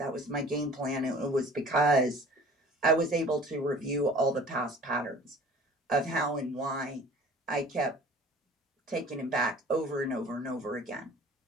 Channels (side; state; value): both; normal; correlation 0.47